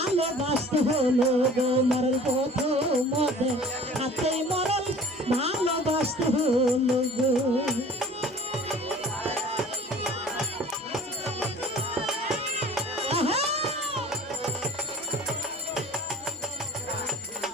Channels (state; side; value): normal; both; correlation 0.47